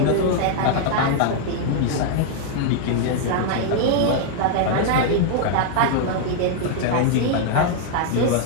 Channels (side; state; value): both; different; correlation 0.00